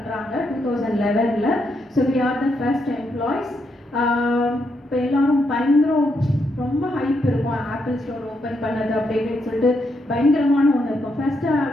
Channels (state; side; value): normal; both; correlation 0.79